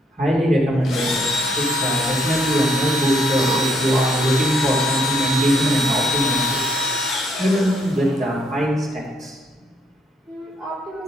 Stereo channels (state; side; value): normal; both; correlation 0.70